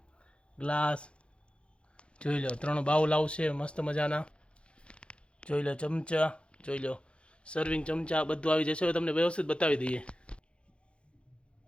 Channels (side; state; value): right; late; 0.058 ms